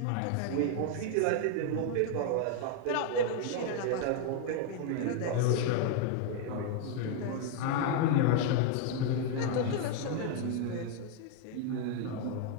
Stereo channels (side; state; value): both; different; correlation 0.00